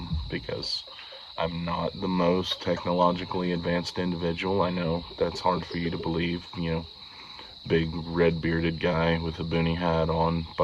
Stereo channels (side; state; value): both; identical; correlation 1.00